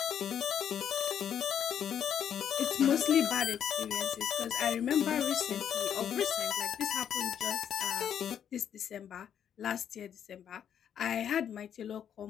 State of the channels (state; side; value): quieter; right; 9.0 dB